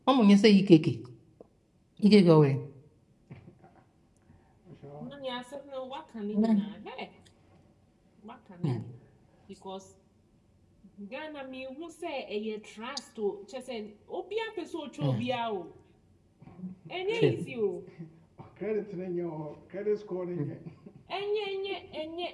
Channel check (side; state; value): both; identical; correlation 1.00